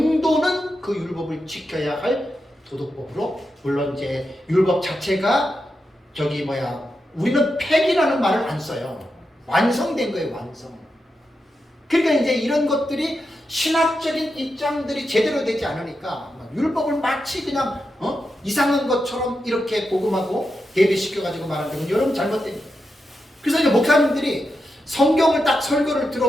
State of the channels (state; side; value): normal; both; correlation 0.87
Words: 그 율법을 지켜야 할 도덕법으로, 물론 이제 율법 자체가 우리는 폐기라는 말을 안 써요. 완성된 거예요, 완성. 그러니까 이제 이런 것들이 신학적인 입장들이 제대로 되지 않으니까 율법을 마치 그냥 이상한 것처럼 이렇게 복음하고 대비시켜가지고 말하는 건 여러분 잘못된 거예요. 그래서 이제 목사님들이 성경을 딱 설교를